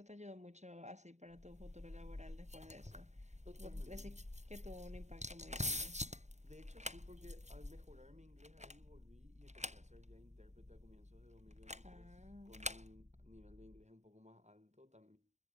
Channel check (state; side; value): late; left; 0.34 ms